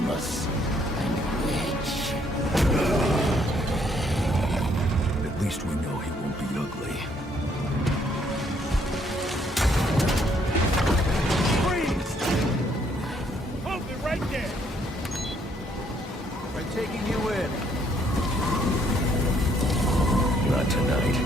and rich. At least we know he won't be ugly. Freeze! Hold me right there! We're taking you in. Not tonight.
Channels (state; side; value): normal; both; correlation 0.68